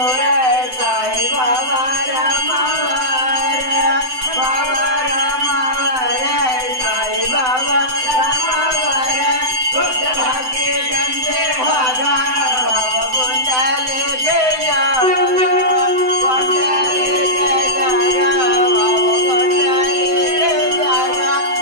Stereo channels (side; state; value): left; late; 7.8 ms